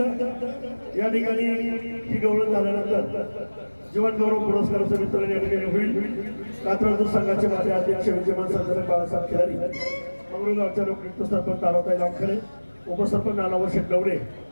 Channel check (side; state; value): both; inverted; correlation -1.00